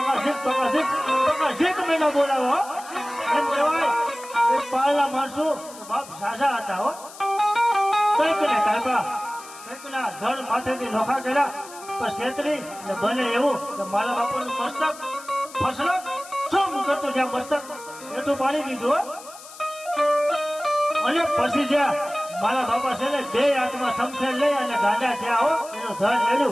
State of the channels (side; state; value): left; noise; hiss, 17 dB below the sound